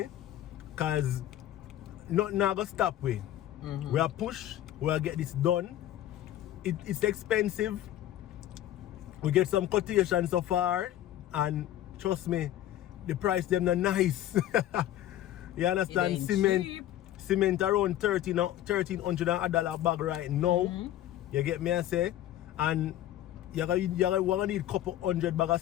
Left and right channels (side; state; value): right; quieter; 13.0 dB